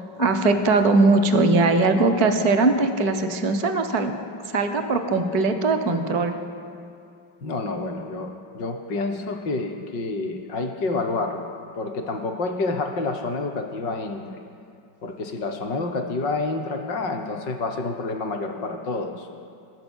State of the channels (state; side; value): late; right; 5.3 ms